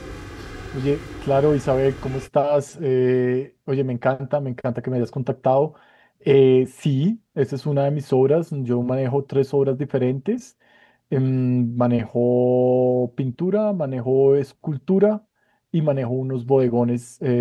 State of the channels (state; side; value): identical; both; correlation 1.00